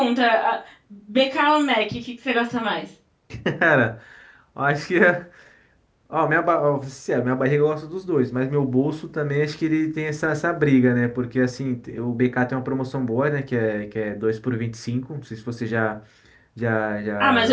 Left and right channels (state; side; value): identical; both; correlation 1.00